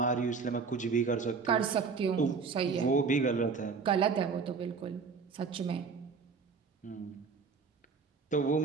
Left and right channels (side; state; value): left; quieter; 5.3 dB